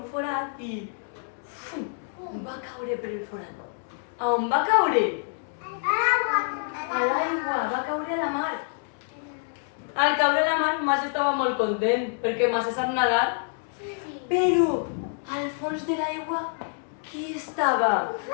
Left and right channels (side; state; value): right; silent; 60 dB below the other